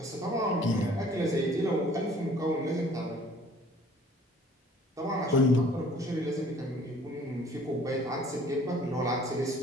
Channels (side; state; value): both; normal; correlation 0.54